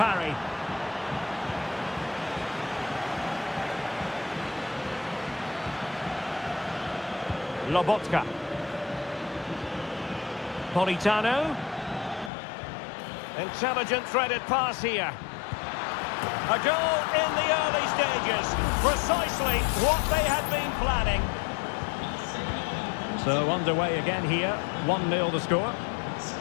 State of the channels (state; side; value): drops out; right; at 12.3 s